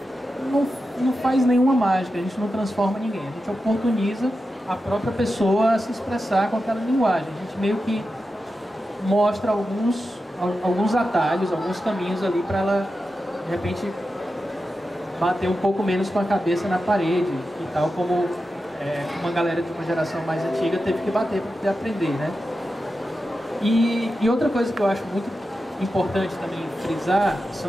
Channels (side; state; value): both; normal; correlation 0.91